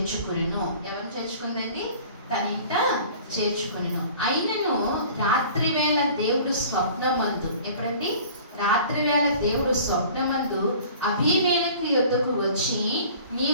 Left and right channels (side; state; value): both; inverted; correlation -0.46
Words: ఎవరు చేర్చుకుందండి? తన ఇంట చేర్చుకును. అయినను రాత్రి వేళ దేవుడు స్వప్నమందు, ఎప్పుడండి? రాత్రి వేళ దేవుడు స్వప్నమందు అబీమెలెకు యొద్దకు వచ్చి,